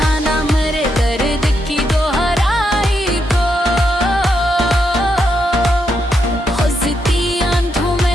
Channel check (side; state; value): both; normal; correlation 0.81